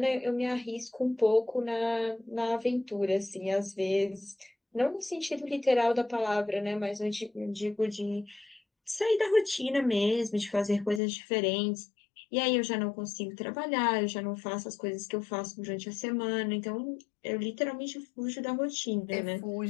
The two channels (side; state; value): right; drops out; at 11.0 s